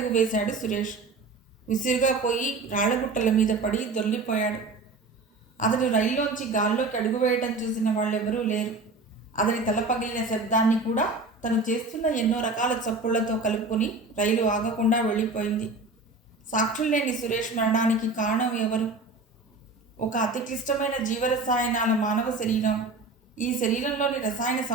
వేశాడు సురేష్. విసురుగా పోయి రాళ్లగుట్టల మీద పడి దొర్లిపోయాడు. అతడు రైల్లోంచి గాల్లోకి అడుగు వేయటం చూసిన వాళ్ళెవరూ లేరు. అతని తల పగిలిన శబ్దాన్ని కూడా తను చేస్తున్న ఎన్నో రకాల చప్పుళ్లతో కలుపుకొని రైలు ఆగకుండా వెళ్ళిపోయింది. సాక్షులు లేని సురేష్ మరణానికి కారణం ఎవరు? ఒక అతి క్లిష్టమైన జీవరసాయనాల మానవ శరీరం. ఈ శరీరంలోని రసాయన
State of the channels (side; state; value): left; quieter; 3.5 dB